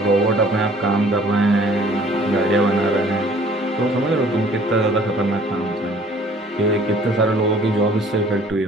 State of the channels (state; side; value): normal; both; correlation 0.55